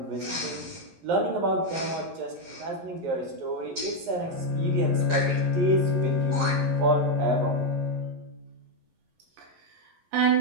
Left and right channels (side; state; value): left; late; 11 ms